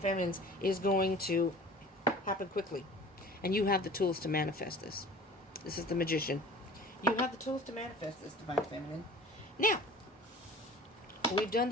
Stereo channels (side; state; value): both; normal; correlation 0.43